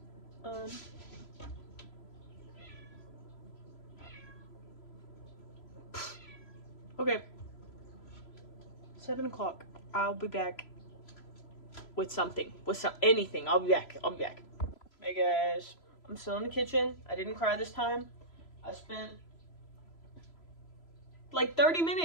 Okay. 7 o'clock. I'll be back with something. With anything. I'll be back. Hey guys. I'm still in the kitchen. I didn't cry this time. I spent like 30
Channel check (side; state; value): right; late; 3.0 ms